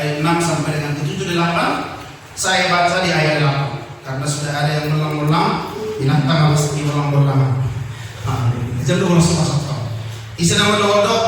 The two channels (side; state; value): both; identical; correlation 1.00